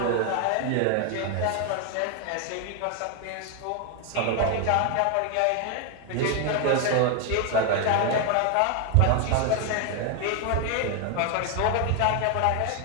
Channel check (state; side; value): different; both; correlation 0.01